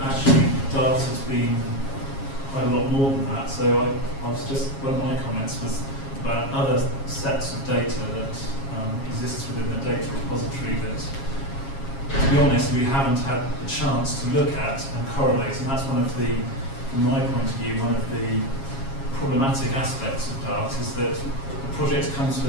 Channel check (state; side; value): late; right; 7.3 ms